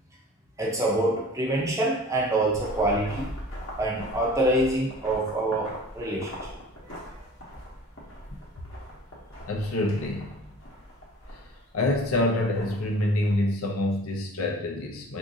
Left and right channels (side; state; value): both; normal; correlation 0.45